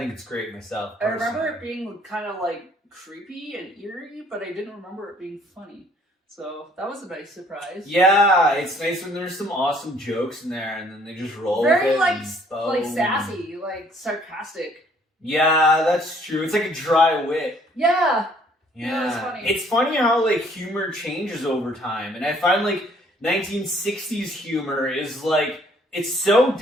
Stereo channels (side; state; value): both; normal; correlation 0.61